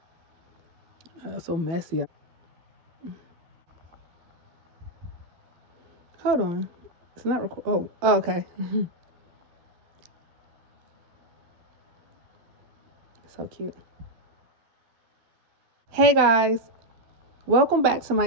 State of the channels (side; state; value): left; late; 12 ms